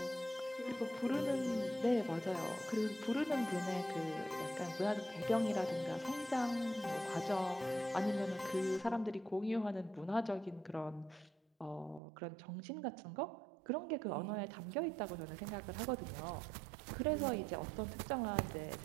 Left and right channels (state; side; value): drops out; left; at 12.0 s